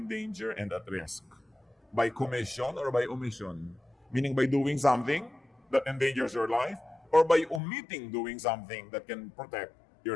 danger and at risk by commission or by omission. Meaning by doing something that endangers your life or by omitting doing something that can protect your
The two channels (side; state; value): right; drops out; at 7.6 s